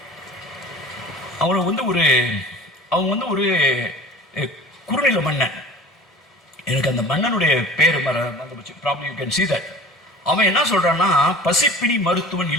அவங்க ஒரு குறுநில மன்னன். எனக்கு அந்த மன்னனுடைய பேர் problem you can see that. அவன் என்ன சொல்றான்னா, பசிப்பினி மருத்துவன்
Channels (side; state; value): both; normal; correlation 0.42